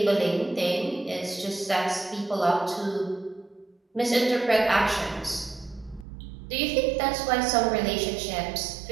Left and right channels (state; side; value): drops out; left; at 6.1 s